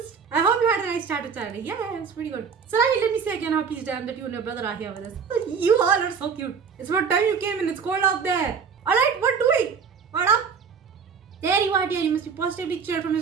I hope you had a nice chat with Saturday. Yeah, it's pretty good. Sarahi, let me say again how pleased I am that you and your brother are here with us. You all are so cute. It's about time you came in. It's cold out there. Alright, what doing? What up? There you are, dear. You must be positively chilled from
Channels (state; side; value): quieter; left; 6.2 dB